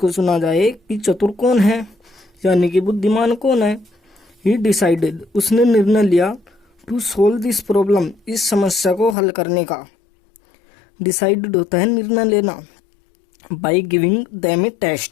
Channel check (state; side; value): drops out; right; at 9.2 s